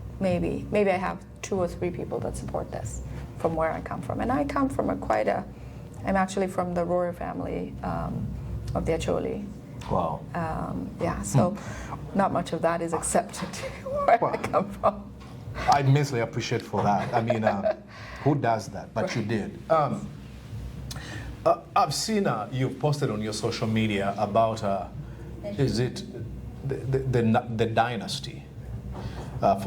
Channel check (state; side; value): identical; both; correlation 1.00